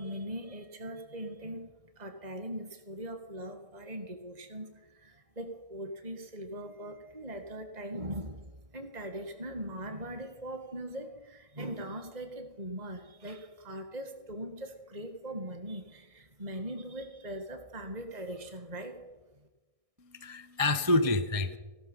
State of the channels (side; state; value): left; late; 1.6 ms